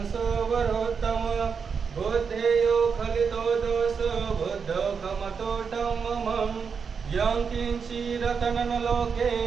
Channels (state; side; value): quieter; left; 6.0 dB